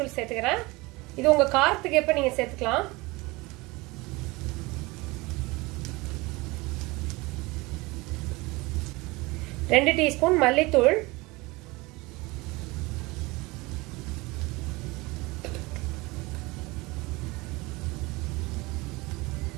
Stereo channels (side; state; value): left; quieter; 23.2 dB